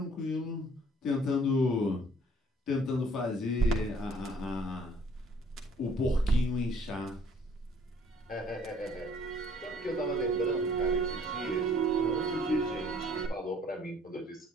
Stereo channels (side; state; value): both; normal; correlation 0.58